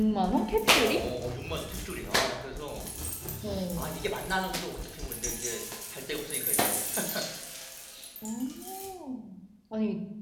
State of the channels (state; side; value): identical; both; correlation 1.00